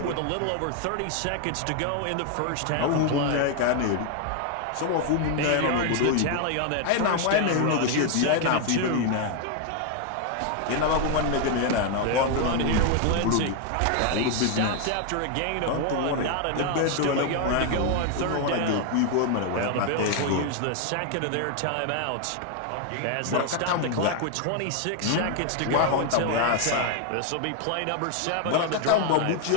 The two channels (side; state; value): both; different; correlation 0.00